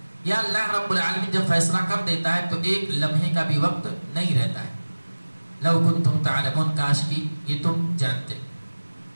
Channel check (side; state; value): both; inverted; correlation -1.00